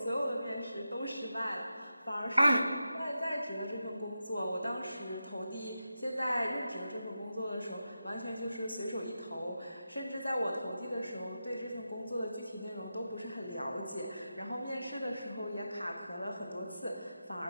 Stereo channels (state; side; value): inverted; both; correlation -0.90